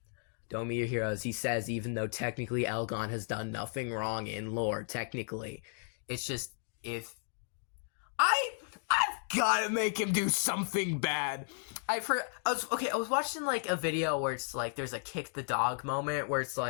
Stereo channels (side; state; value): right; silent; 55 dB below the other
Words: don't be your heroes, he says, even though technically Elgon has done nothing wrong in lore, technically. It's just, if... I've gotta make him do something bad. I was watching, like, a video where it's like, there's a kick the dog moment, where it's